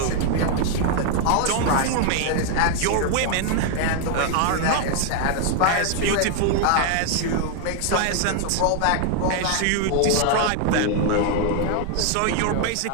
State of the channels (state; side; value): different; both; correlation 0.00